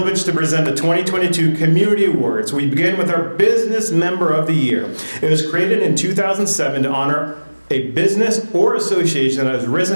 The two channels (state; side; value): inverted; both; correlation -1.00